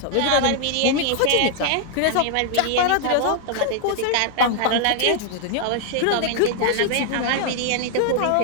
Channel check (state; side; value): different; both; correlation 0.00